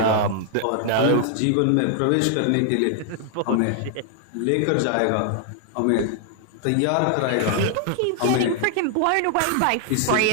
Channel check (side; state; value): both; different; correlation 0.00